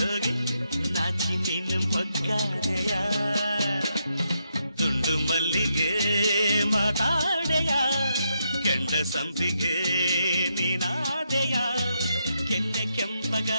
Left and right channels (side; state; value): both; inverted; correlation -0.81